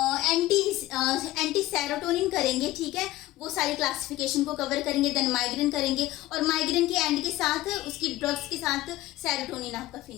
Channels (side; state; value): right; quieter; 16.7 dB